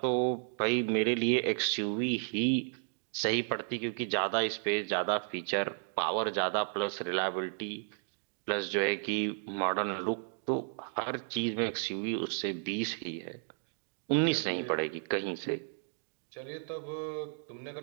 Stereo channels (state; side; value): silent; left; digital silence